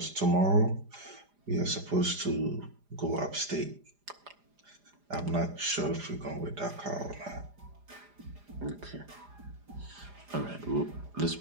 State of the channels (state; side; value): late; left; 4.9 ms